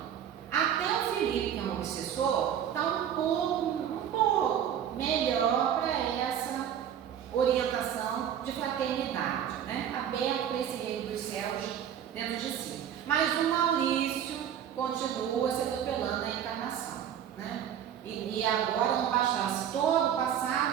Até o Felipe, que é um obsessor, está um pouco melhor para essa orientação de fraternidade, né? Aberto para esse reino dos céus dentro de si. Mas o Maurício continua se atropelando na encarnação, né? E agora não bastasse todo o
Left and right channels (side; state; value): left; quieter; 9.4 dB